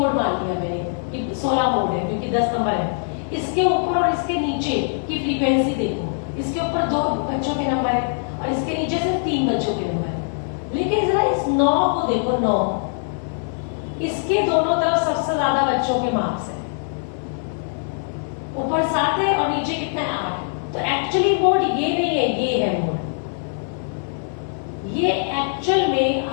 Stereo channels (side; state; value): right; silent; 64 dB below the other